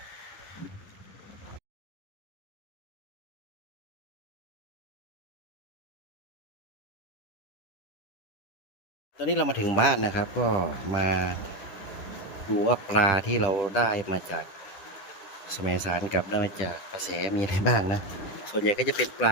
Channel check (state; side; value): late; right; 10 ms